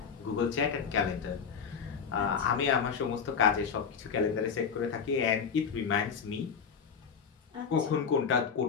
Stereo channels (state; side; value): quieter; right; 6.4 dB